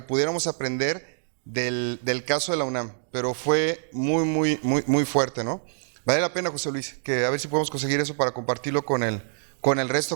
pudiéramos aprender del caso de la UNAM, pero fue muy fuerte, ¿no? Vale la pena, José Luis, que a ver si podemos conseguir eso para compartirlo con el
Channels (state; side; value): silent; left; digital silence